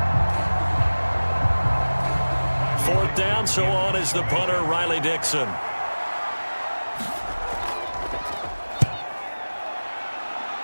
Down, so on is the punter, Riley Dixon.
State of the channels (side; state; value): both; inverted; correlation -1.00